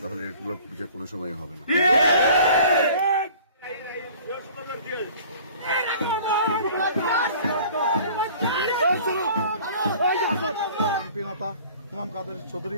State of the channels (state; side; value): inverted; both; correlation -0.48